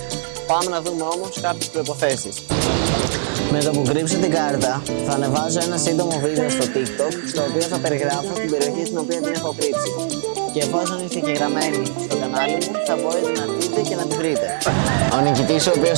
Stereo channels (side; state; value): left; silent; digital silence